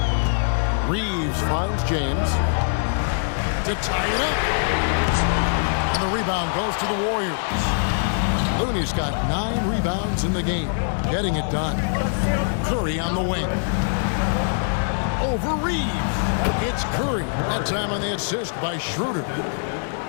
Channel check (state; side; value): silent; right; digital silence